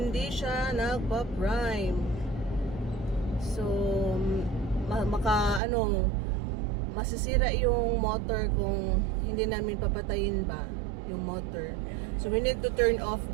siya nagpa-prime. So masisira yung motor kung hindi namin papatayin ba yung motor. So we need to turn off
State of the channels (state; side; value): drops out; left; at 5.6 s